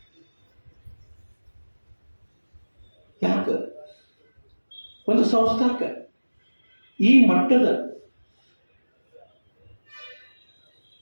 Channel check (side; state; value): both; inverted; correlation -1.00